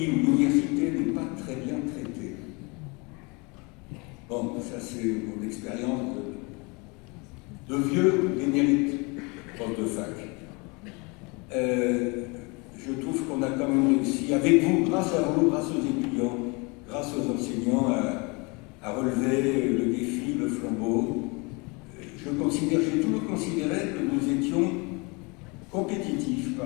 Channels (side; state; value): right; quieter; 28.9 dB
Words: où l'université n'est pas très bien traitée, bon, ça c'est mon expérience de vieux émérite prof de fac. Je trouve qu'on a quand même réussi, avec vous, grâce à vous, grâce aux étudiants, grâce aux enseignants, à relever le défi, le flambeau. J'ai toujours considéré que nous étions compétitifs